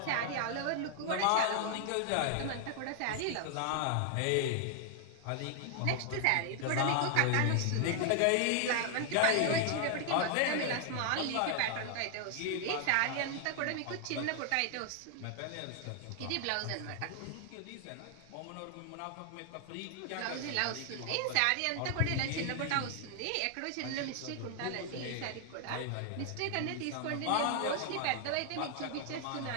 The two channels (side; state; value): both; different; correlation 0.00